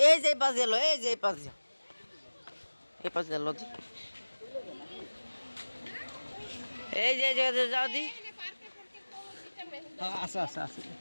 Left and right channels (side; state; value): both; inverted; correlation -1.00